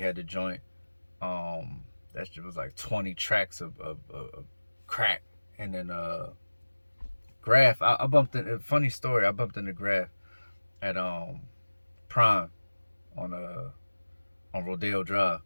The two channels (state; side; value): inverted; both; correlation -1.00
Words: the joint. That shit was like 20 tracks of crack. And then Grafh, I bumped in, funny story, I bumped into Grafh at Prime on Rodeo Drive,